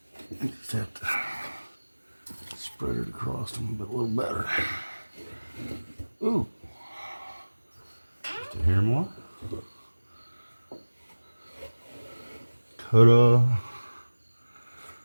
I just have to spread it across them a little better. Ooh. Just a hair more. Ta-da.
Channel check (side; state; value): both; inverted; correlation -1.00